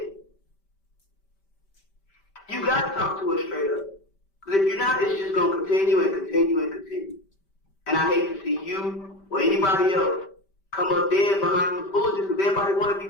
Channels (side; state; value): right; late; 5.1 ms